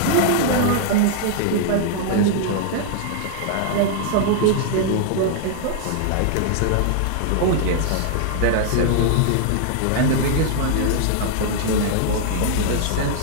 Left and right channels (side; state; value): both; different; correlation -0.01